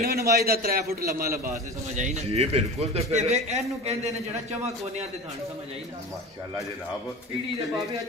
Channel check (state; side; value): normal; both; correlation 0.33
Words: ਮੱਝ ਦਾ 3 ਫੁੱਟ ਲੰਮਾ ਲਿਬਾਸ ਹੈ, ਸਮਝ ਆਈ ਨਾ। ਜੀ ਬਿਲਕੁਲ। ਤੇ ਤੇ ਫਿਰ ਵੇ ਇਹਨੂੰ ਕਹਿੰਦੇ ਨੇ ਜਿਹੜਾ ਚਵਾਂ ਕੋਨਿਆਂ ਤੇ ਥਣ, ਸਮਝ ਆਈ ਨਾ। ਮਾਸ਼ਾਅੱਲਾ ਜਨਾਬ ਪੀੜੀ ਦੇ ਬਾਬੇ